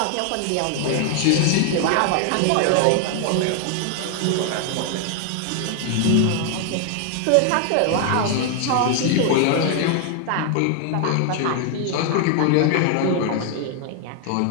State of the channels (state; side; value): different; both; correlation 0.00